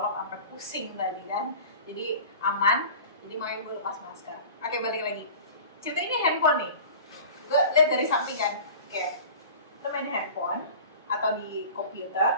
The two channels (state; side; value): inverted; both; correlation -0.39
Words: sampai pusing tadi kan. Jadi aman, jadi makanya gue lepas masker. Oke, balik lagi. Cerita ini handphone nih. Gue lihat dari samping kan, lo main handphone atau di